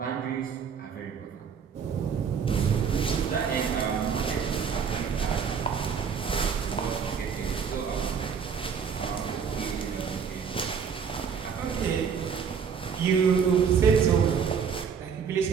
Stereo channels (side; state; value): left; quieter; 6.7 dB